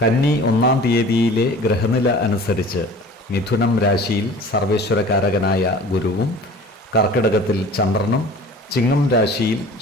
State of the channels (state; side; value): normal; both; correlation 0.43